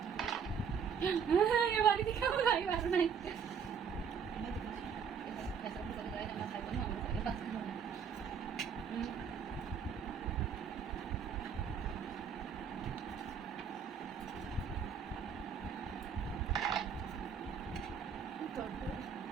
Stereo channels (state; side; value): quieter; left; 6.9 dB